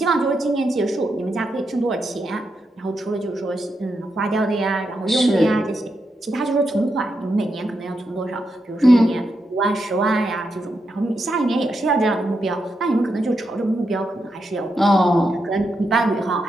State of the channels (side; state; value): both; normal; correlation 0.84